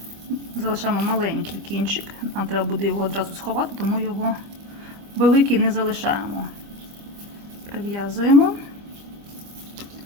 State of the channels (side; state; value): left; late; 25 ms